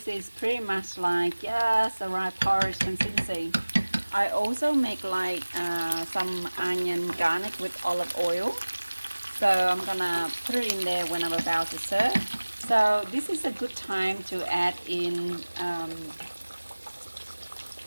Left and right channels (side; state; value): both; inverted; correlation -1.00